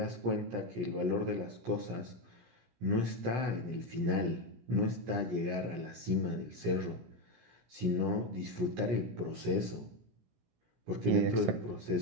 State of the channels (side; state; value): left; late; 17 ms